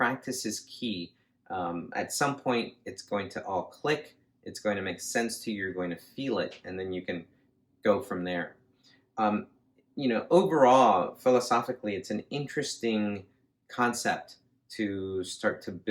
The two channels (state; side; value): identical; both; correlation 1.00